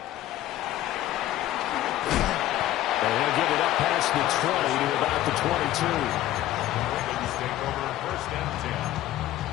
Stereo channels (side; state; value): right; quieter; 14.0 dB